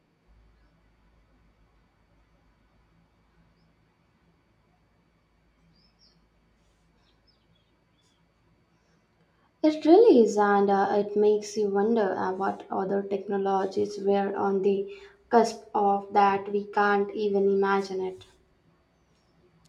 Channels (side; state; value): both; identical; correlation 1.00